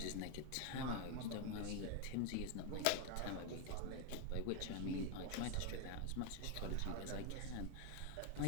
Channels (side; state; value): both; different; correlation 0.01